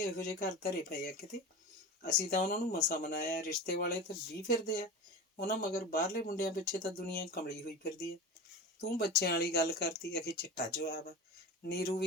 ਇਹੋ ਜਿਹੇ ਘਰ ਧਰੇ ਪਏ ਆ ਕਿਤੇ। ਅਸੀਂ ਤਾਂ ਉਹਨਾਂ ਨੂੰ ਮਸਾਂ ਮਨਾਇਆ, ਰਿਸ਼ਤੇ ਵਾਲੇ ਤਾਂ 20 ਫਿਰਦੇ ਆ ਉਹਨਾਂ ਮਗਰ। ਬਾਹਰਲੇ ਮੁੰਡਿਆਂ ਪਿੱਛੇ ਤਾਂ ਦੁਨੀਆ ਕਮਲੀ ਹੋਈ ਫਿਰਦੀ ਆ। ਤੂੰ ਬੱਚਿਆਂ ਵਾਲੀ ਗੱਲ ਕਰਤੀ, ਅਖੇ ਚਿੱਟਾ ਜਵਾਬ ਆ। ਨੀਰੂ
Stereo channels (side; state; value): both; normal; correlation 0.30